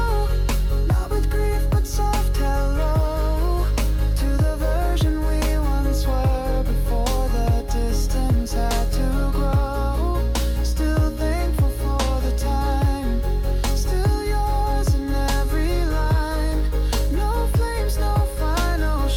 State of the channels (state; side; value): identical; both; correlation 1.00